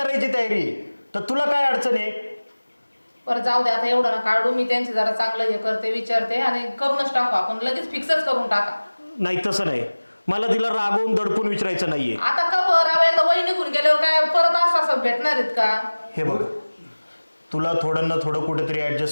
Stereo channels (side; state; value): both; inverted; correlation -1.00